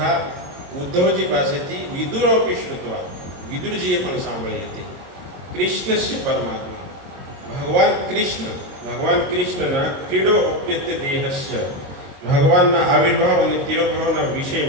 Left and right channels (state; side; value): late; left; 22 ms